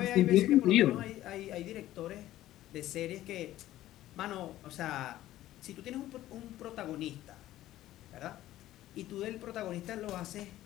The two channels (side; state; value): right; quieter; 14.4 dB